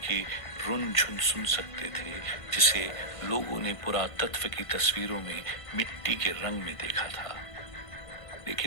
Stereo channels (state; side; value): late; right; 1.5 ms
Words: रुन झुन सुन सकते थे जिसे लोगों ने पुरातत्व की तस्वीरों में मिट्टी के रंग में देखा था।